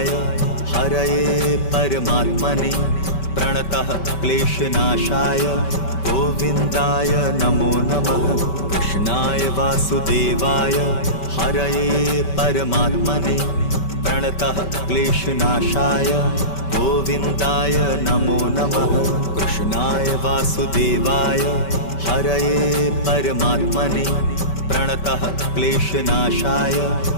हरये परमात्मने प्रणतः क्लेशनाशाय गोविन्दाय नमो नमः। कृष्णाय वासुदेवाय हरये परमात्मने प्रणतः क्लेशनाशाय गोविन्दाय नमो नमः। कृष्णाय वासुदेवाय हरये परमात्मने प्रणतः क्लेशनाशाय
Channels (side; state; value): right; late; 5.2 ms